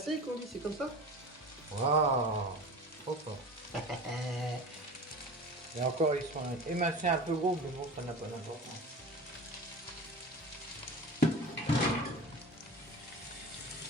qu'on dit, c'est comme ça? Waouh, trop fort. Et encore, ils sont émincés un peu gros, mais bon, ça n'a pas d'importance.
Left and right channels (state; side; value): normal; both; correlation 0.34